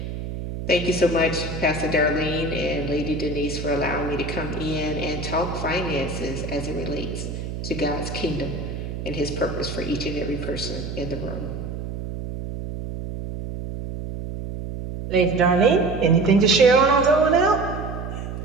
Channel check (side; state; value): right; noise; hum, 7 dB below the sound